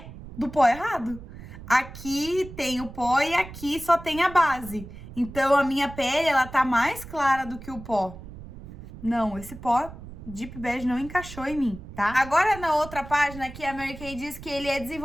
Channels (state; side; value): noise; right; rumble, 14 dB below the sound